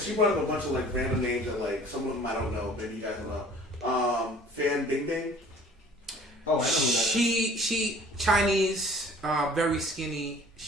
she brought up a bunch of like random names that like some of them I don't know. Maybe you guys don't know. Fan Bing Bing. Oh, I know who that is. She Chinese, very skinny.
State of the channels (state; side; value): normal; both; correlation 0.50